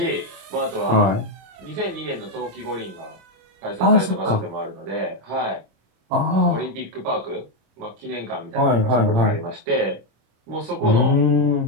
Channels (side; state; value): left; late; 26 ms